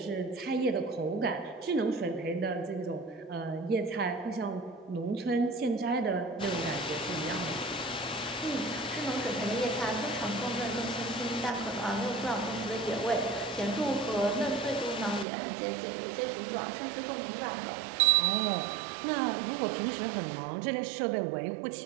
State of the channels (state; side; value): drops out; left; at 15.2 s